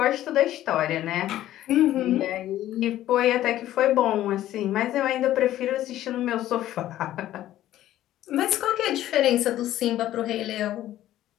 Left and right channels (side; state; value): right; quieter; 13.4 dB